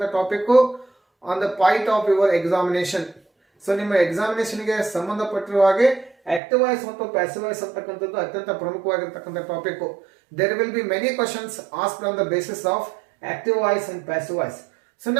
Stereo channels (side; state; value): left; drops out; at 6.4 s